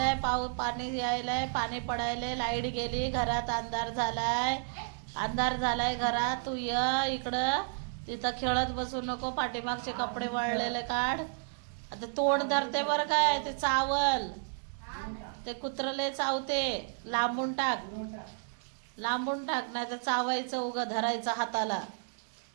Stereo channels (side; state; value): left; silent; digital silence